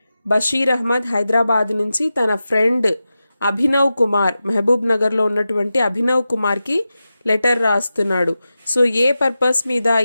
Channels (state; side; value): inverted; both; correlation -0.92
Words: బషీర్ అహ్మద్ హైదరాబాద్ నుంచి తన ఫ్రెండ్ అభినవ్ కుమార్, మహబూబ్ నగర్లో ఉన్నటువంటి అభినవ్ కుమార్కి లెటర్ రాస్తున్నాడు. సో ఏ పర్పస్ మీద,